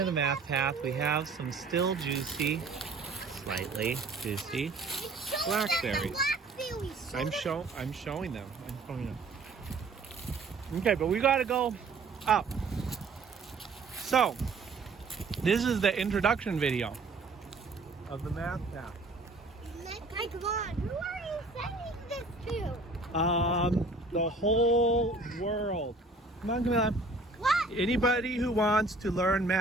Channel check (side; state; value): left; quieter; 3.4 dB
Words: the math path, we have some still juicy, slightly juicy blackberries. I'm showing them. Okay, but we gotta go up. So, this is the introduction video of the math path. Okay, come on. Who are you sending this to? The whole world. Come on, Camilla. What? Anybody who wants to learn